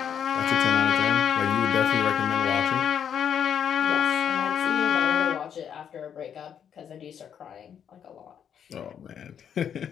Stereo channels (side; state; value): right; quieter; 8.4 dB